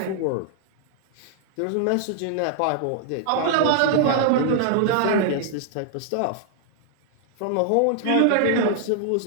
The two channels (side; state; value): both; different; correlation -0.01